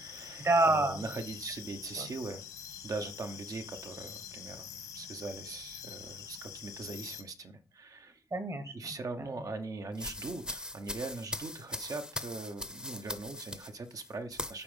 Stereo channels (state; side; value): normal; both; correlation 0.57